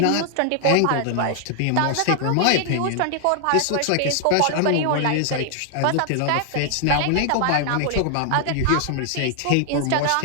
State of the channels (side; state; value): both; different; correlation 0.00